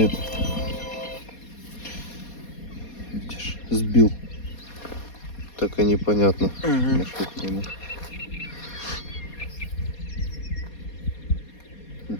Видишь, сбил. Так и непонятно. На что это ему.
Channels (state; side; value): late; right; 4.2 ms